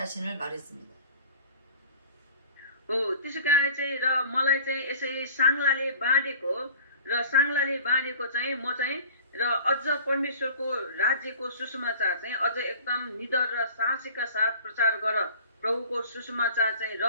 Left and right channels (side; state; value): both; inverted; correlation -0.45